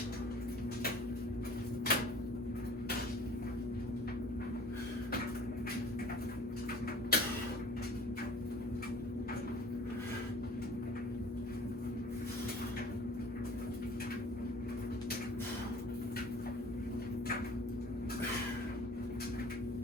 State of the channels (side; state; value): both; normal; correlation 0.48